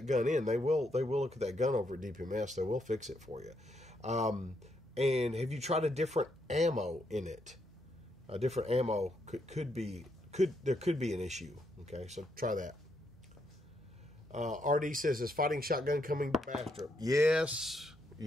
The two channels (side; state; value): both; normal; correlation 0.77